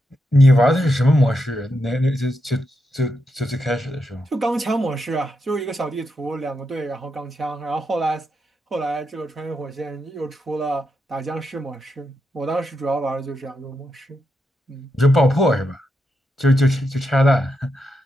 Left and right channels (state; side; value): normal; both; correlation 0.84